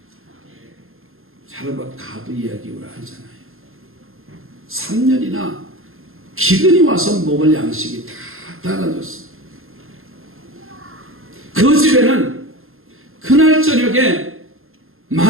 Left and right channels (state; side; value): late; left; 0.61 ms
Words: 자르밧 가부 이야기 우리가 하잖아요. 3년이나 기근이 와서 먹을 양식이 다 떨어졌어. 그 집에는 그날 저녁에